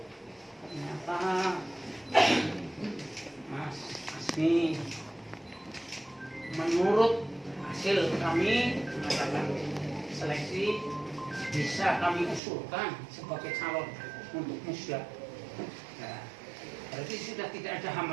Ternyata Mas Asmi menurut hasil kami mengatakan seleksi bisa kami usulkan sebagai calon untuk musda. Nah, berarti sudah tidak ada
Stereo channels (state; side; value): drops out; left; at 12.4 s